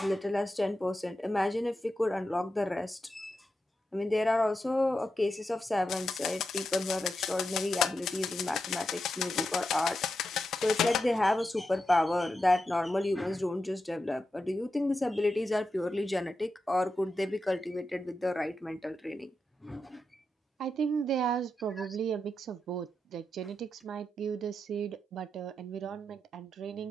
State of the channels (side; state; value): both; normal; correlation 0.88